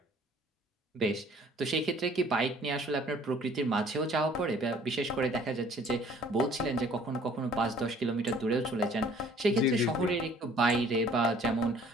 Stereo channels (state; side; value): normal; both; correlation 0.55